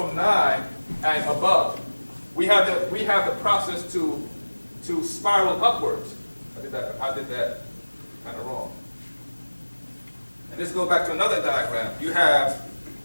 9 and above. We have the process to spiral upwards. I did that kind of wrong. And let's go back to another diagram. You have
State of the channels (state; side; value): inverted; both; correlation -1.00